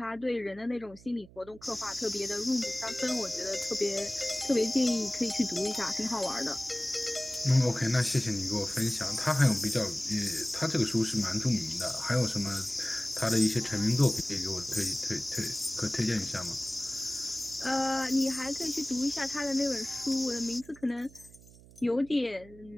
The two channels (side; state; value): right; noise; hum, 22 dB below the sound